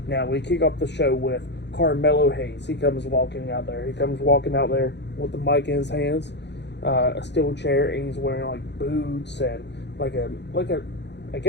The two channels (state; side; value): late; right; 0.50 ms